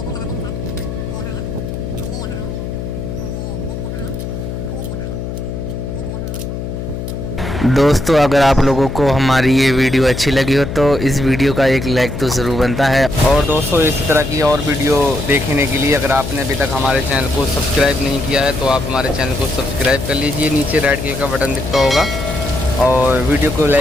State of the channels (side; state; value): left; noise; hum, 6 dB below the sound